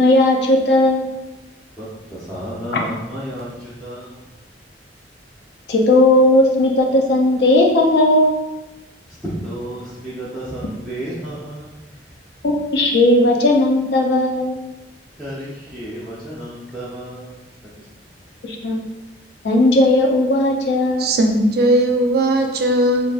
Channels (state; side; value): normal; both; correlation 0.35